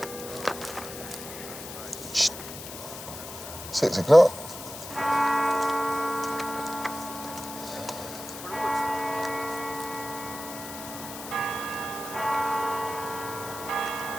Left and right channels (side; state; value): left; noise; hiss, 11 dB below the sound